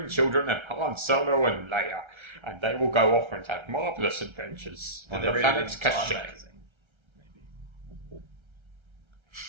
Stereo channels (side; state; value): left; late; 1.3 ms